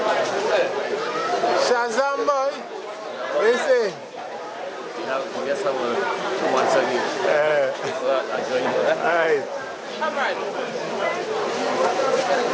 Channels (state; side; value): identical; both; correlation 1.00